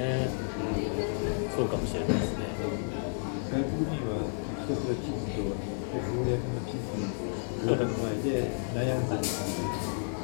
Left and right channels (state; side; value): silent; right; digital silence